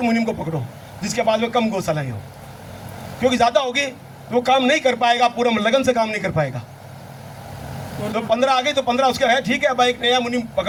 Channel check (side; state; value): both; identical; correlation 1.00